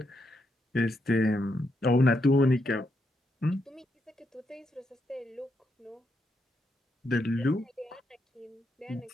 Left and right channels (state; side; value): normal; both; correlation 0.80